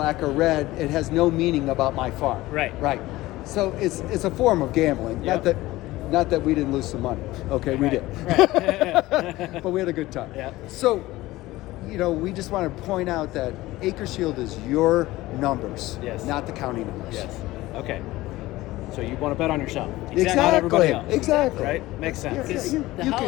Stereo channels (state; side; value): quieter; right; 18.0 dB